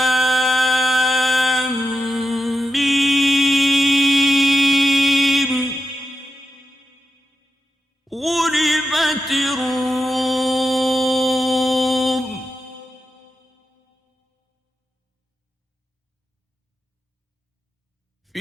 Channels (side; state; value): both; normal; correlation 0.89